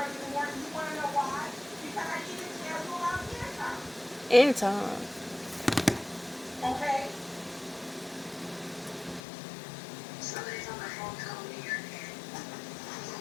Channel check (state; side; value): drops out; right; at 9.2 s